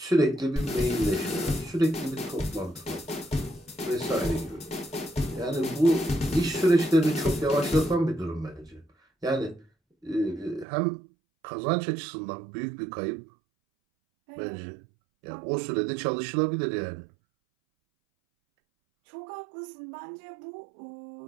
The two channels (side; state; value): left; drops out; at 10.7 s